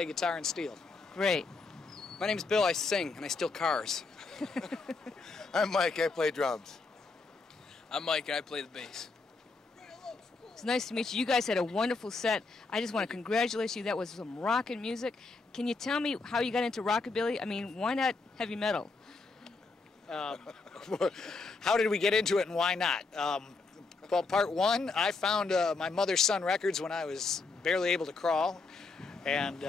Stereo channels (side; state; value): right; quieter; 4.0 dB